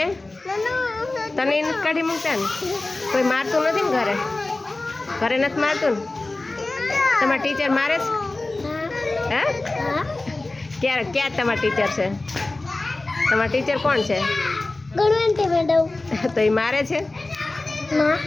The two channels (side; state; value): right; quieter; 3.0 dB